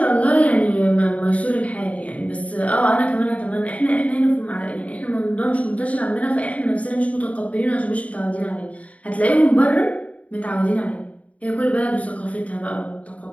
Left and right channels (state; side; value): late; right; 0.067 ms